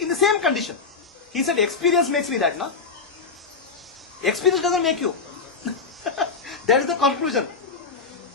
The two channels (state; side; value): quieter; right; 4.9 dB